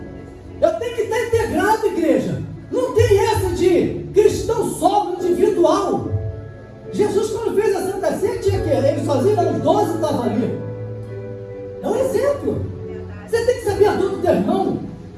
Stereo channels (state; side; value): identical; both; correlation 1.00